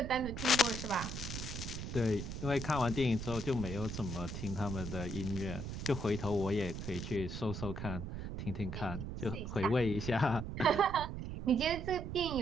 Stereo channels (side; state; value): right; noise; rumble, 6 dB below the sound